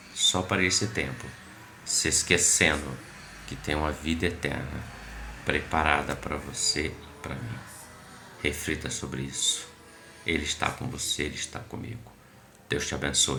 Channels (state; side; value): identical; both; correlation 1.00